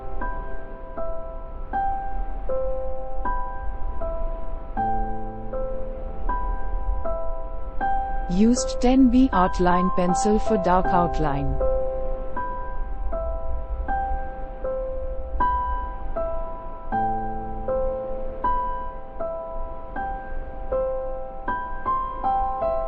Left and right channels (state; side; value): identical; both; correlation 1.00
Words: Used 10B Artline pencil for dark outline.